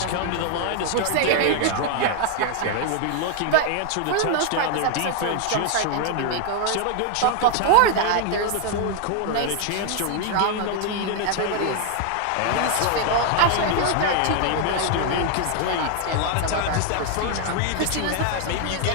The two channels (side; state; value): both; different; correlation 0.00